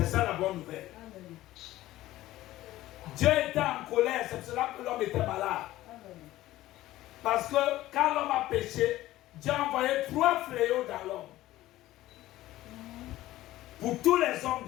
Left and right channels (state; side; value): quieter; right; 15.7 dB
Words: ça la bonne nouvelle. Amen. Dieu était en colère, c'est pour cela que l'homme était malade. Amen. Parce que quand l'homme a péché, Dieu a envoyé 3 fléaux dans l'homme. Pour tous les hommes